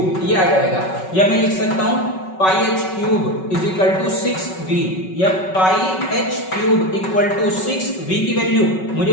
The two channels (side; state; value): right; late; 5.3 ms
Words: ये आ जाएगा, या मैं लिख सकता हूं pi h cube is equal to 6v, या pi h cube equal to 6v की वैल्यू मुझे